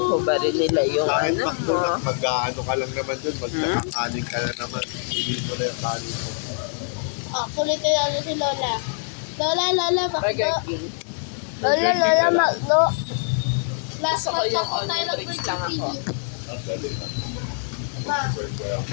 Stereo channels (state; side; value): silent; right; digital silence